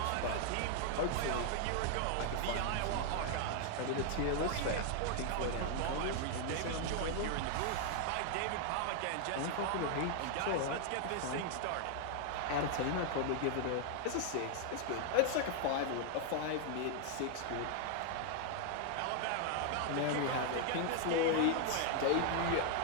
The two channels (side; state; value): both; different; correlation 0.00